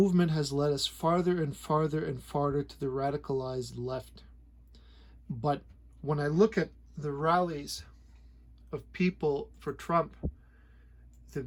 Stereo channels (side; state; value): both; identical; correlation 1.00